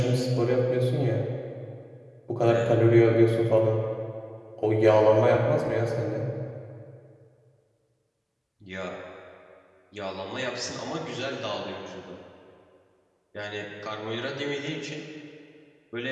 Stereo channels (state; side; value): identical; both; correlation 1.00